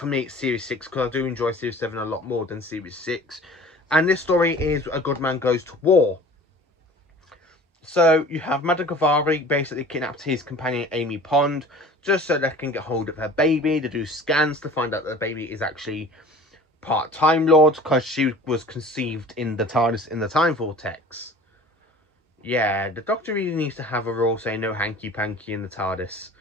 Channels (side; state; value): both; normal; correlation 0.44